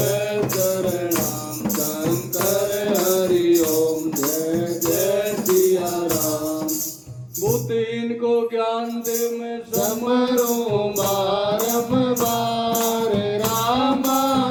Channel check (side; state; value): both; identical; correlation 1.00